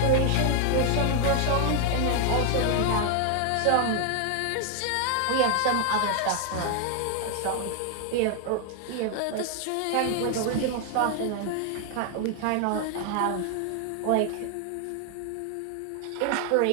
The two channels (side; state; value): both; different; correlation 0.00